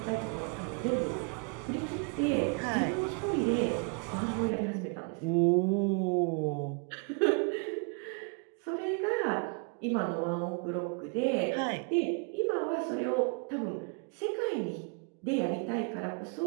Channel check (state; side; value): quieter; left; 36.3 dB